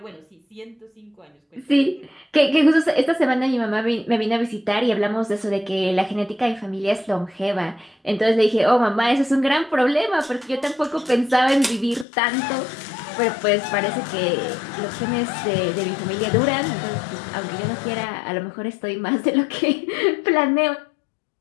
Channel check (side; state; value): right; drops out; at 12.1 s